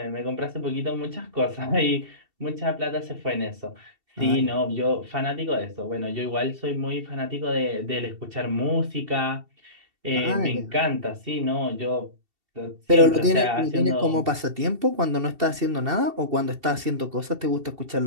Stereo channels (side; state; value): left; late; 2.7 ms